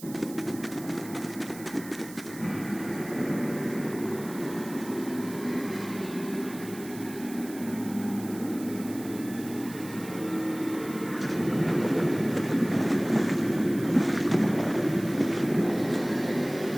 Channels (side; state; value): right; noise; hiss, 16 dB below the sound